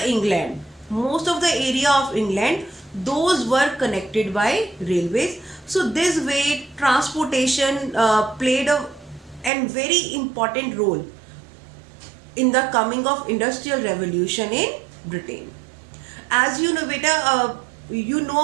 area of England, those were connected by railways. So this way transportation played a very important role in the coming of industrial revolution in Britain. As you know beta, you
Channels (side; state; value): left; drops out; at 9.5 s